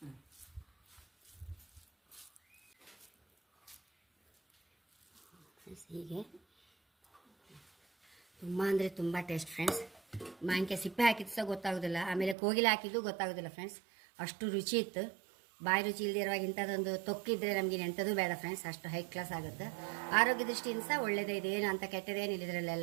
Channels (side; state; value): left; drops out; at 12.4 s